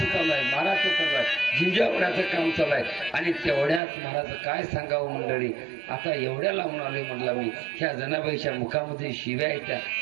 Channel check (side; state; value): left; drops out; at 3.8 s